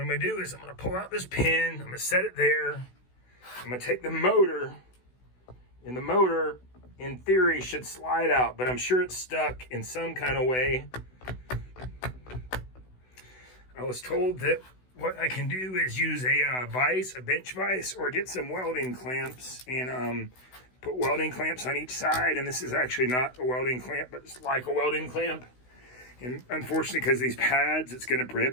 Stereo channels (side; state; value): right; late; 16 ms